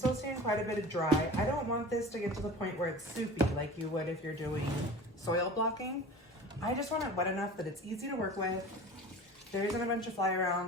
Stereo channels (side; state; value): both; normal; correlation 0.38